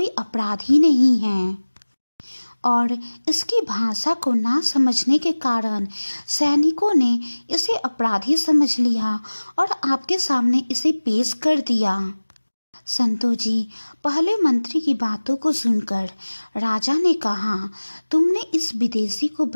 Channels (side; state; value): both; inverted; correlation -1.00